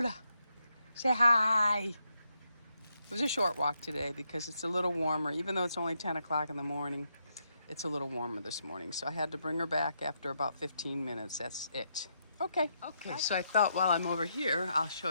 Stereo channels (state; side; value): inverted; both; correlation -0.80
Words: Say hi. It was a short walk today because it's a little warmer. Even though it's only 10 o'clock in the morning, it's a little warmer this morning. So I had to bring her back after about 15 minutes. That's it. Okay. Okay, so I thought while I'm over here, I'll